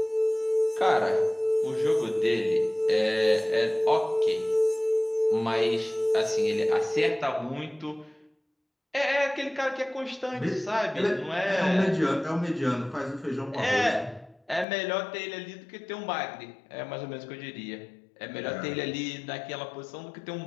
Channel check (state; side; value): drops out; right; at 14.7 s